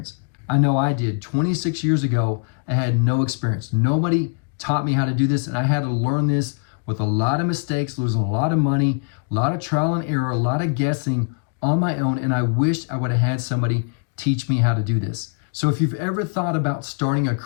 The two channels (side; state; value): right; quieter; 38.4 dB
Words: I know I did. 26 years ago, I had no experience. Nobody taught me how to do this, and I had to learn this with a lot of mistakes, losing a lot of money, a lot of trial and error, a lot of guessing on my own, and I wished I would have had somebody teach me how to do this. So if you've ever thought about starting a